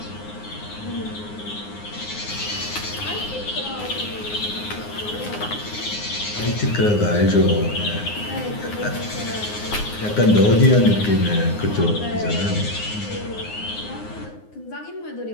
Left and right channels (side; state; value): right; late; 9.6 ms